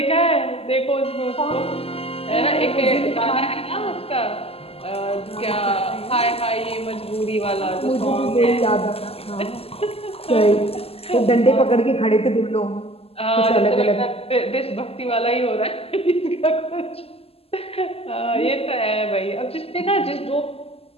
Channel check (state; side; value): late; right; 0.29 ms